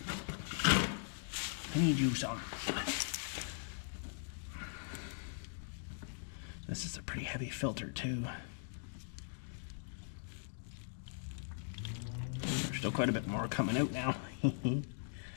I need you some. This is a pretty heavy filter too. There's still quite a bit more coming out now.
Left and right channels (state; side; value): silent; right; digital silence